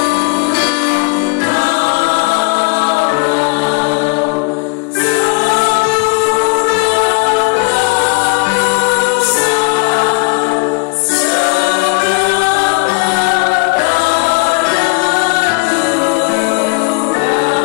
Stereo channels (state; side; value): quieter; right; 30.6 dB